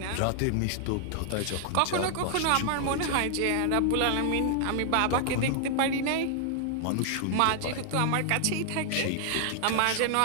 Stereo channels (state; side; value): different; both; correlation 0.00